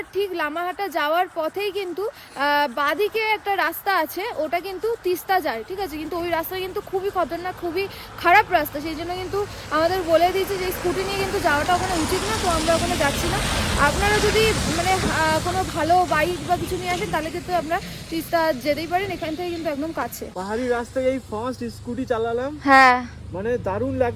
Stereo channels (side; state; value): both; identical; correlation 1.00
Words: ঠিক লামাহাটা যাওয়ার পথেই কিন্তু বাঁদিকে একটা রাস্তা আছে, ওটা কিন্তু তিস্তা যায়, ঠিক আছে। কিন্তু ওই রাস্তা কিন্তু খুবই খতরনাক, খুবই খারাপ রাস্তা, সেই জন্য কিন্তু আমাদের বলে দিয়েছে যে স্কুটি নিয়ে কিন্তু যাওয়াটা ওখানে উচিত না, তো আমরা ওখানে যাচ্ছি না। আপনারা যদি মানে কোনো ভালো বাইক বা কিছু নিয়ে আসেন তাহলে কিন্তু আমরা তিস্তা যেতেই পারেন, এখান থেকে কিন্তু একদম কাছে। পাহাড়ি রাস্তায় এই ফার্স্ট স্কুটি চালালাম, হ্যাঁ মানে দারুণ